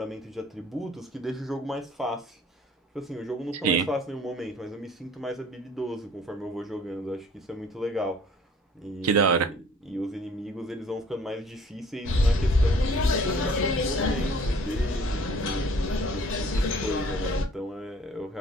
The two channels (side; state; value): both; normal; correlation 0.54